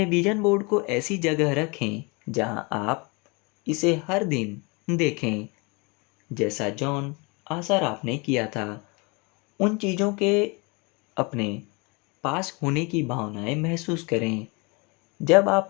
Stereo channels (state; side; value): quieter; right; 29.2 dB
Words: विजन बोर्ड को ऐसी जगह रखें जहाँ आप इसे हर दिन देखें, जैसा जॉन आसराफ ने किया था। उन चीज़ों के अपने पास होने की भावनाएं महसूस करें। जब